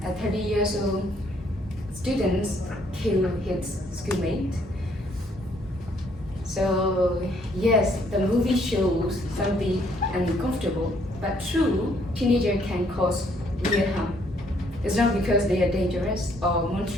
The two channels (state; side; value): normal; both; correlation 0.67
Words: a 30 years old student killed his schoolmate. So yes, the movie shows something uncomfortable, but true, teenager can cause real harm. It's not because they are dangerous or